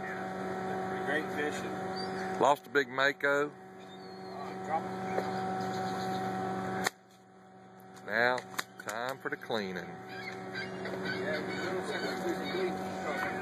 Great fishing. Lost a big mako. Now, time for the cleaning.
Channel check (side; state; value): both; identical; correlation 1.00